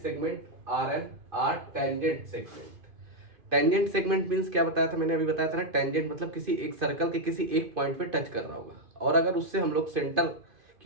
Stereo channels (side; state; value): left; late; 2.5 ms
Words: RN are tangent segment. Tangent segment means क्या बताया था मैंने, अभी बताया था ना, टेंजेंट मतलब किसी एक सर्कल के किसी एक पॉइंट पे टच कर रहा होगा, और अगर उससे हम लोग सेंटर